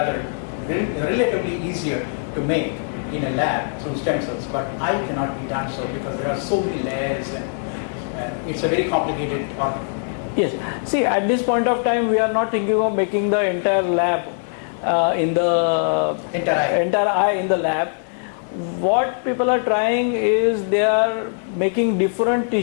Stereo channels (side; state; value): right; silent; digital silence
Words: relatively easier to make in a lab through stem cells, but eye cannot be done so because there are so many layers, and it's a very complicated organ. Yes. See, at this point of time, we are not thinking of making the entire lab in the Entire eye. in the lab. What people are trying is they are making different